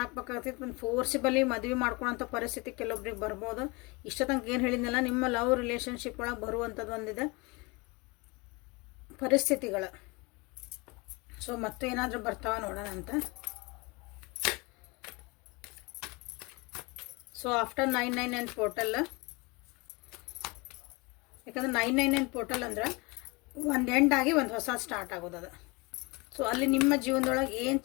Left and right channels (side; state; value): right; quieter; 26.7 dB